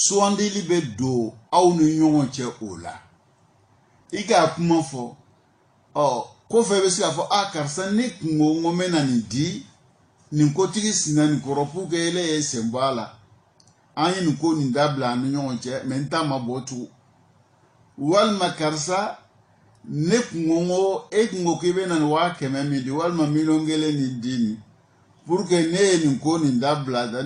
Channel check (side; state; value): both; identical; correlation 1.00